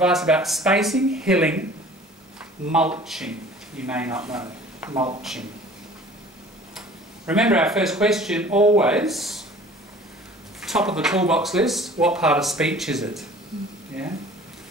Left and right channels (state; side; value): normal; both; correlation 0.47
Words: about spacing, hilling, mulching. You may not know, mulching. Remember our first question, always, top of the toolbox list, what part of speech is it? Yeah?